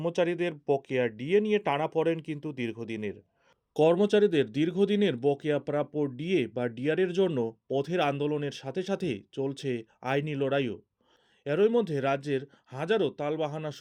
বকেয়া ডিএ নিয়ে টানাপোড়েন কিন্তু দীর্ঘদিনের। কর্মচারীদের দীর্ঘদিনের বকেয়া প্রাপ্য ডিএ বা ডিআরের জন্য পথের আন্দোলনের সাথে সাথে চলছে আইনি লড়াইও। এরই মধ্যে রাজ্যের হাজারো তালবাহানা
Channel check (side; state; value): both; identical; correlation 1.00